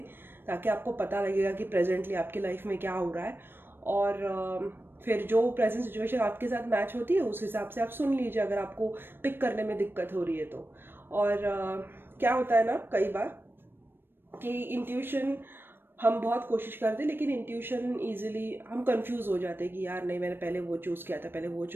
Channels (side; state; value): left; late; 0.10 ms